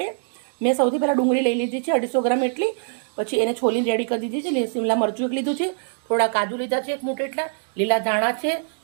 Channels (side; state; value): left; silent; digital silence